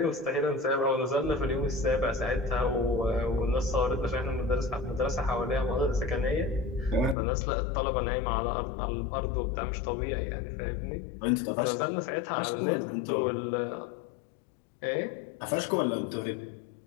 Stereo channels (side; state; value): right; drops out; at 7.2 s